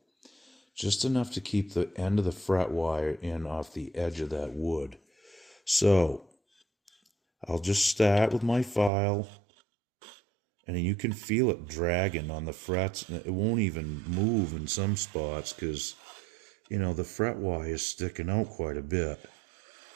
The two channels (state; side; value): drops out; left; at 8.9 s